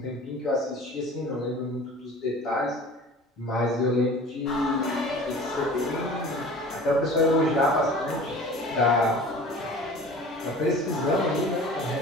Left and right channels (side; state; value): both; normal; correlation 0.42